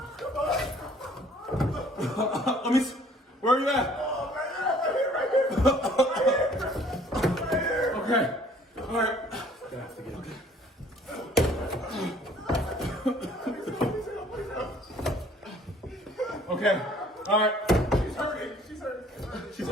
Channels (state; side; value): normal; both; correlation 0.56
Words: Come on. Let me see. Where are you at? Oh, right here. Okay. All right. Gonna have to get it. Okay. All right. She's hurting. She's hurting. She's